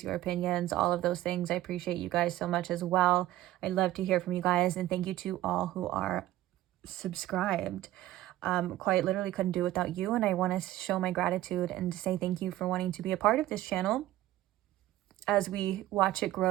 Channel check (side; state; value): left; quieter; 15.0 dB